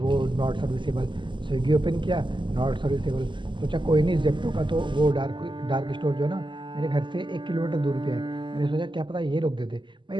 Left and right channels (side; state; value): left; late; 0.23 ms